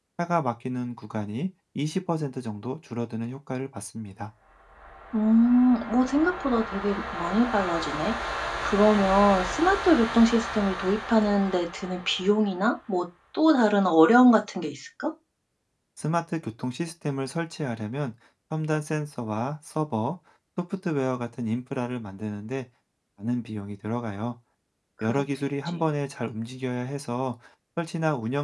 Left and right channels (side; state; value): both; identical; correlation 1.00